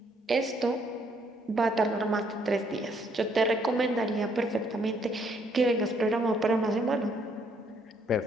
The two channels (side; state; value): both; normal; correlation 0.68